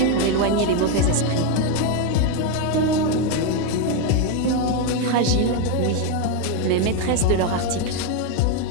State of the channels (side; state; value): both; different; correlation 0.02